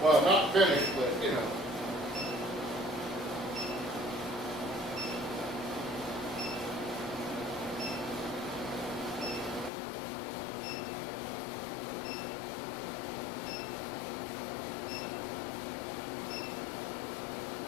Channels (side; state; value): right; drops out; at 9.7 s